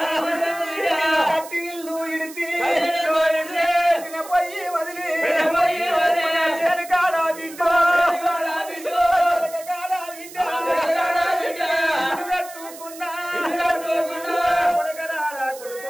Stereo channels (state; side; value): noise; right; hiss, 16 dB below the sound